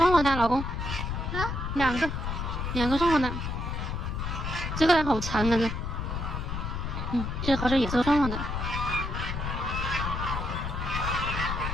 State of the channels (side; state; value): left; noise; rumble, 3 dB below the sound